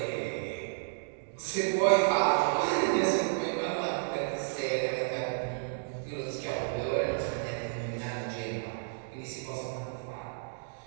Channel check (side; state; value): left; silent; digital silence